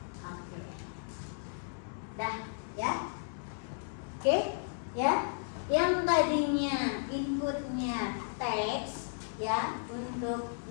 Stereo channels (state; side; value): silent; right; digital silence